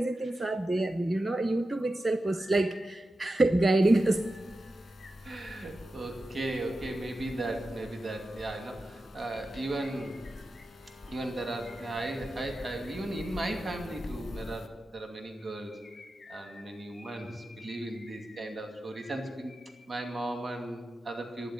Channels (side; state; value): both; normal; correlation 0.92